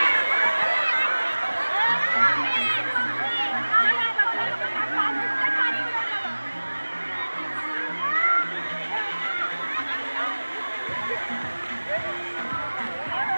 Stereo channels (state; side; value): inverted; both; correlation -1.00